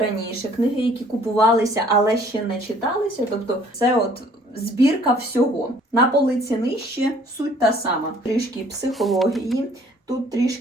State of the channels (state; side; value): normal; both; correlation 0.57